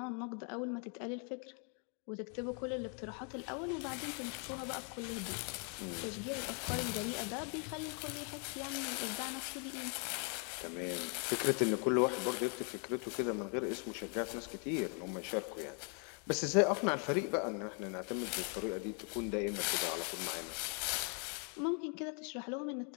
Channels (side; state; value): right; quieter; 39.2 dB